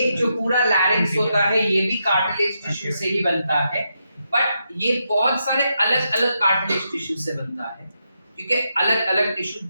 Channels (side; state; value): both; inverted; correlation -0.83